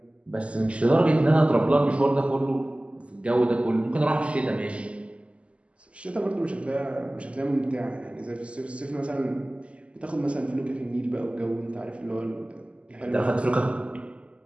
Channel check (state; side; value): late; left; 0.059 ms